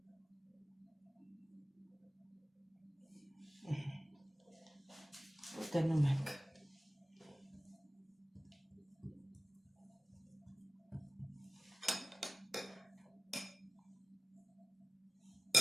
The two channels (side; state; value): both; normal; correlation 0.96